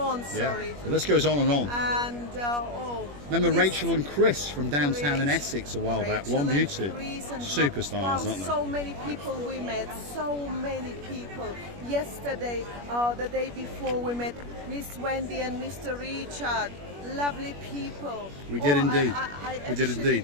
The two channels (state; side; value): late; left; 21 ms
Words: sorry. Yeah. The list goes on and on. And Remember Miss Rachel and Chris from downtown in Essex a while back? Rachel Blonde and Beauty. Chris and Superstars, wow, aren't they? so many people we met, so many people. Yesterday, the day before, we met Miss Wendy and Mr. Richard. Lovely people. We did indeed. We did actually- indeed.